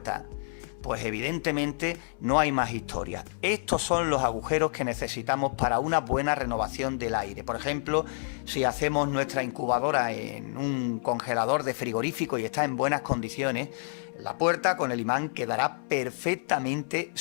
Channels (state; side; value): silent; right; 59 dB below the other